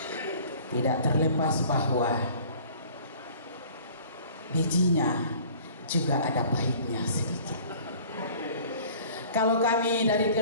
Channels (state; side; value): inverted; both; correlation -0.49